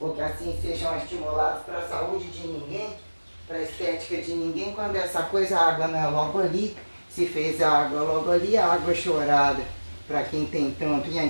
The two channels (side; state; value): both; inverted; correlation -1.00